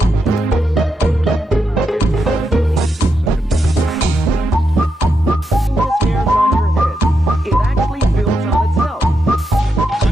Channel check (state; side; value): normal; both; correlation 0.84